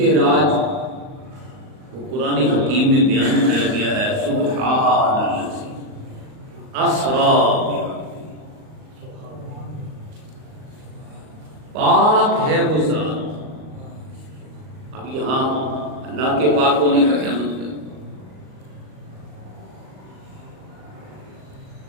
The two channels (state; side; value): late; left; 38 ms